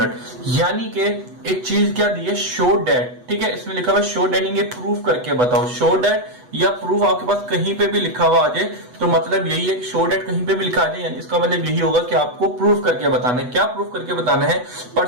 यानी कि एक चीज क्या दी है, शो दैट। ठीक है, इसमें लिखा हुआ शो दैट, ये प्रूफ करके बताओ। शो दैट या प्रूफ आपके पास कहीं पे भी लिखा हुआ आ जाए तो मतलब यही है कि शो दैट कहीं पे भी लिखा आ जाए, यानी इसका मतलब यही होगा कि आपको प्रूफ करके बताना है। क्या प्रूफ करके बताना है?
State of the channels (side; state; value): left; late; 8.1 ms